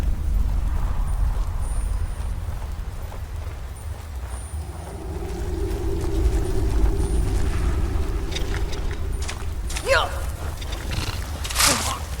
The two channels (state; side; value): identical; both; correlation 1.00